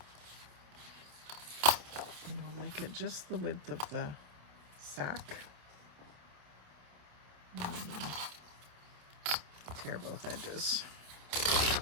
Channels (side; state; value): left; late; 27 ms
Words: normally make it just the width of the sack. Tear both edges.